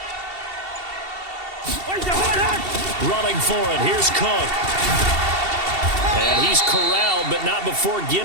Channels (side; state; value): left; late; 2.7 ms